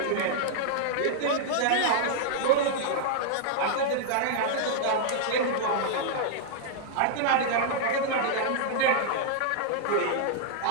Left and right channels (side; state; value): both; different; correlation -0.01